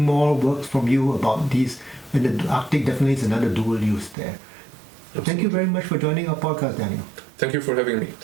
more works from you about these. And the Arctic definitely is another dual use there. Absolutely. Thank you very much for joining our podcast, Daniel. Thank you for having me.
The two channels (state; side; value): drops out; left; at 4.2 s